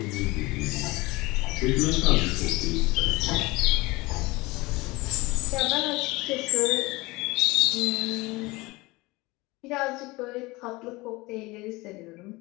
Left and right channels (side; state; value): right; quieter; 22.4 dB